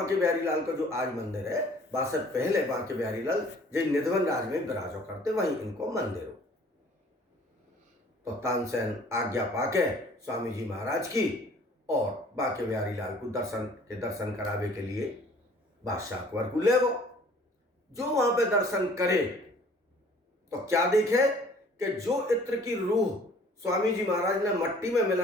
बिहारी लाल का जो आज मंदिर है, बादशाह पहले बांके बिहारी लाल जो निधवन राज में विराजो करते, वहीं इनको मंदिर हो। तो तानसेन आज्ञा पाके स्वामी जी महाराज की और बांके बिहारी लाल को दर्शन करावे के लिए बादशाह अकबर को ले गो। जो वहां पे दर्शन करे तो क्या देखे कि जो इत्र की रूह स्वामी जी महाराज ने मट्टी में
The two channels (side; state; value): both; normal; correlation 0.53